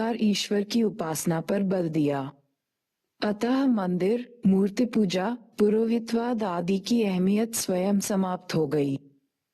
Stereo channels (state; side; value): identical; both; correlation 1.00